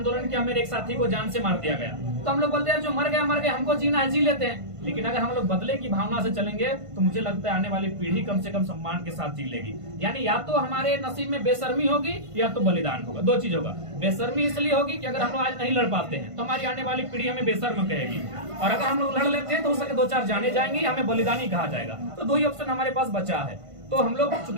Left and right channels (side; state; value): left; late; 1.5 ms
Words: किया, मेरे एक साथी को जान से मार दिया गया, तो हम लोग बोलते हैं जो मर गया, हमको जीना है, जी लेते हैं। लेकिन अगर हम लोग बदले की भावना से चलेंगे तो मुझे लगता है आने वाली पीढ़ी कम से कम सम्मान के साथ जी लेगी। यानी या तो हमारे नसीब में बेशर्मी होगी या तो बलिदान होगा, दो चीज होगा। बेशर्मी इसलिए होगी कि अगर हम लोग आज नहीं लड़ पाते हैं तो हमारी आने वाली पीढ़ी हमें बेशर्म कहेगी, और अगर हम लोग लड़ लेते हैं तो हो सके 2-4 जाने जाएंगी, हमें बलिदानी कहा जाएगा। तो दो ही ऑप्शन हमारे पास बचा है। तो हम लोग